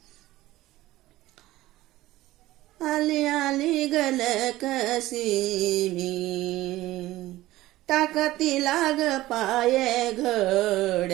आली आली गलकसी मी टाकती लाग पाये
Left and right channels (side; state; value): left; quieter; 16.6 dB